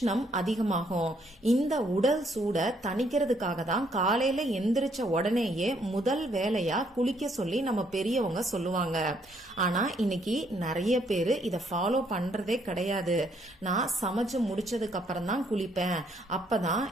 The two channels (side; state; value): both; normal; correlation 0.69